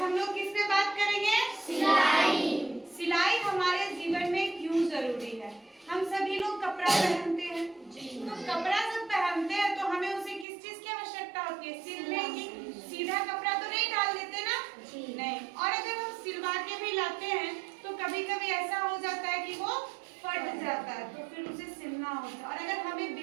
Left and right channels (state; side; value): drops out; left; at 10.5 s